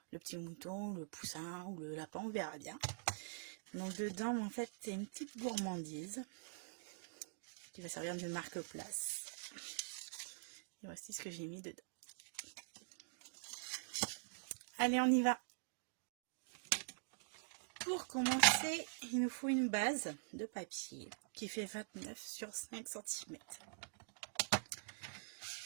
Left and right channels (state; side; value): silent; left; digital silence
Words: le petit mouton, le poussin ou le lapin, on verra bien. Donc dedans en fait c'est une petite gourmandise qui va servir de marque-place. Et voici ce que j'ai mis dedans. Allez, on y va. Pour commencer, il nous faut une base de papier qui fait 29 sur 5 cm.